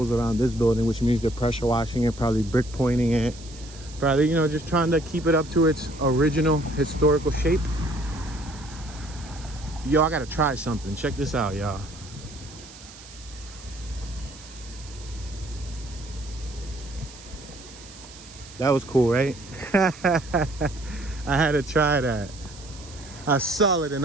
around this building, which means they're pressure washing it, probably brick pointing it. Probably, you know, just trying to keep it up to its original historical shape. Yo, I gotta try something. Check this out, y'all. That was cool, right? I had to try that. I saw it and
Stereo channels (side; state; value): right; noise; hiss, 18 dB below the sound